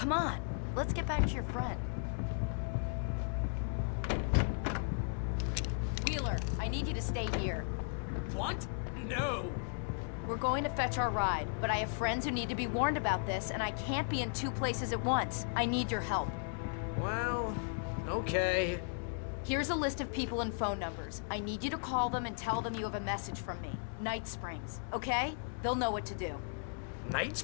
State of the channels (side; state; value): right; silent; digital silence